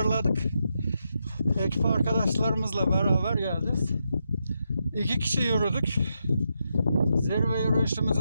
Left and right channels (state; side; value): inverted; both; correlation -0.84